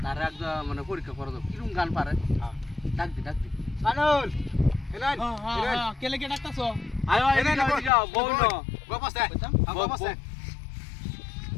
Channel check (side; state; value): right; drops out; at 7.9 s